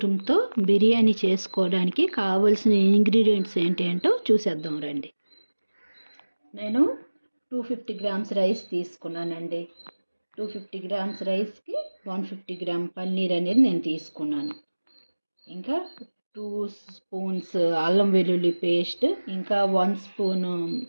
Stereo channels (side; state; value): both; inverted; correlation -1.00